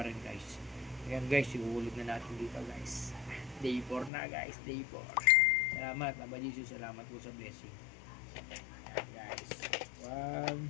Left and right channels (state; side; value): drops out; right; at 4.1 s